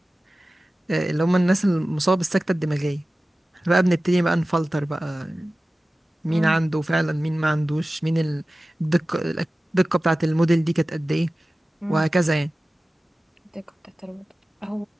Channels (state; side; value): normal; both; correlation 0.96